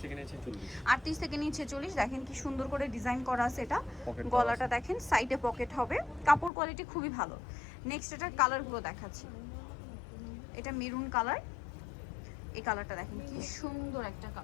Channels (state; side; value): drops out; right; at 6.5 s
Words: থেকে নিয়ে 46। 38 থেকে নিয়ে 46। দেখেন কি সুন্দর করে ডিজাইন করা আছে এটা। গলাটা দেখেন, সাইডে পকেট হবে, কাপড় কোয়ালিটি খুবই ভালো। নেক্সট এটার কালারগুলো দেখাচ্ছি। এটা মেরুন কালার, এই কালারটা দেখেন কি সুন্দর একটা